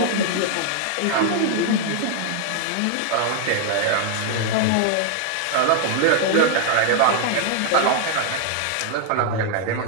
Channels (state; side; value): different; both; correlation 0.00